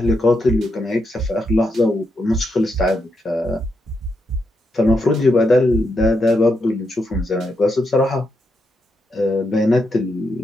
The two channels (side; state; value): both; normal; correlation 0.82